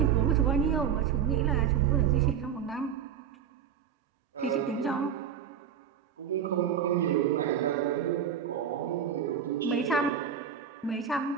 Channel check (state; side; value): quieter; left; 8.3 dB